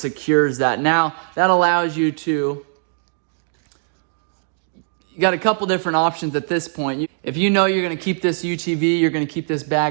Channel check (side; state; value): left; silent; digital silence